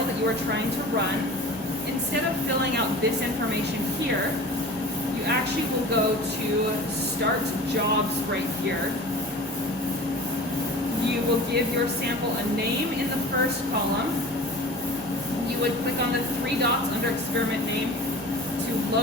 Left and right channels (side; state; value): both; normal; correlation 0.38